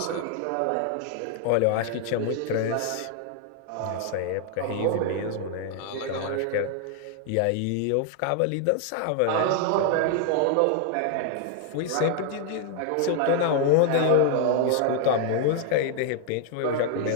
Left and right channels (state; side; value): different; both; correlation 0.00